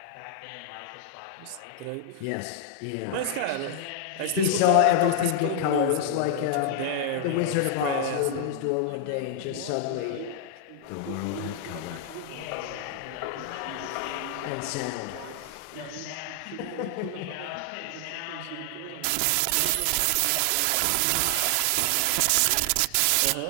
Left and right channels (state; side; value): different; both; correlation 0.00